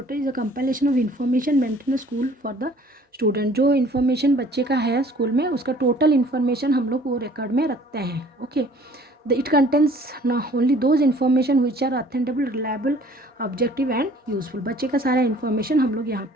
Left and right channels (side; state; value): both; normal; correlation 0.54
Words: is a compilation of information maintain school for the student. जो इन्फॉर्मेशन बच्चे का है स्कूल में उसका टोटल इन्फॉर्मेशन हम लोग वो रिकॉर्ड में रखते हैं। Okay, it contains only those information which are authentic, reliable, objective and useful। बच्चे का सारा इन्फॉर्मेशन हम लोग यहाँ